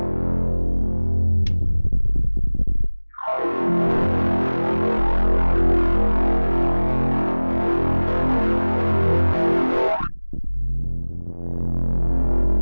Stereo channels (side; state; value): both; inverted; correlation -1.00